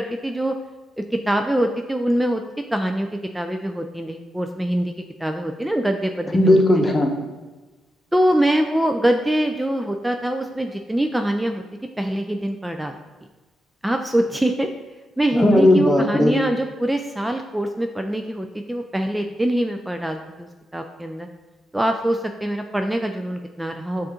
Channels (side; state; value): both; normal; correlation 0.90